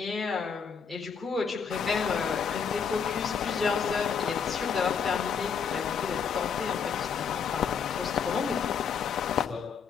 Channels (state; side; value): quieter; right; 6.5 dB